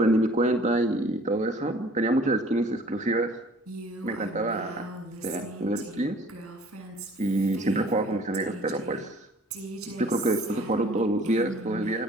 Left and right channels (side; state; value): both; normal; correlation 0.52